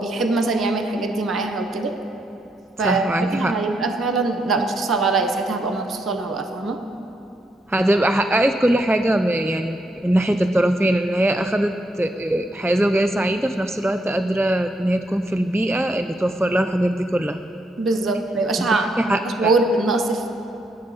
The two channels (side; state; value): both; normal; correlation 0.78